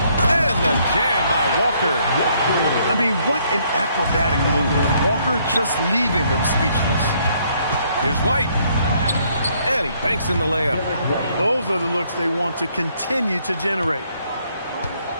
And the jam by Walker. I mean, what an acrobatic move. Walker just leaving them speechless. Here's White. And he banks in the layup. Those are the looks they want to continue to generate.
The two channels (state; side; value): inverted; both; correlation -0.68